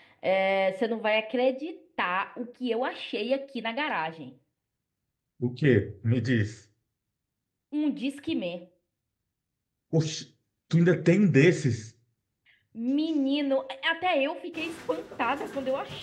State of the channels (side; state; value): both; identical; correlation 1.00